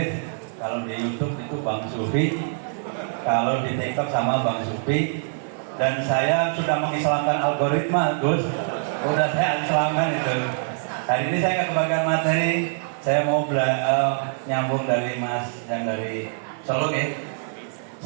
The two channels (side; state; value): left; silent; digital silence